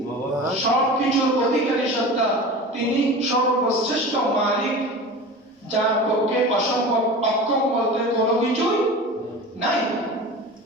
সবকিছুর অধিকারী সত্তা, তিনি সর্বশ্রেষ্ঠ মালিক, যার পক্ষে অসম্ভব অক্ষম বলতে কোনো কিছুই নাই।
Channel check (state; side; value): normal; both; correlation 0.33